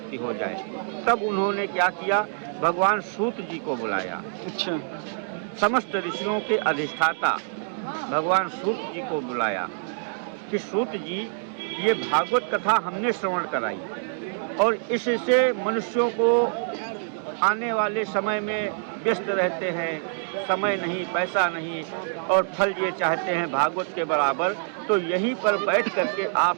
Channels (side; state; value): left; silent; digital silence